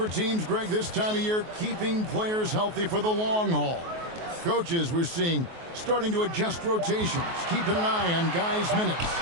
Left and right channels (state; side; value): late; left; 23 ms